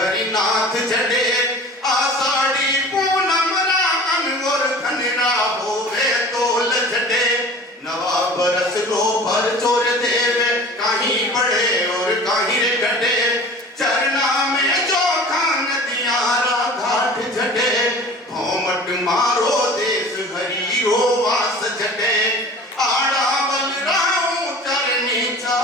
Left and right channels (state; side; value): normal; both; correlation 0.42